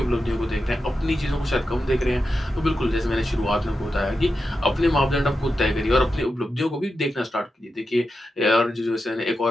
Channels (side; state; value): both; normal; correlation 0.89